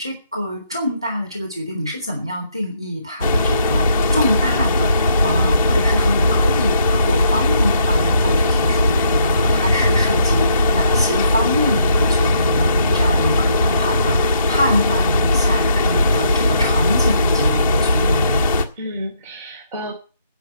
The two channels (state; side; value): inverted; both; correlation -0.72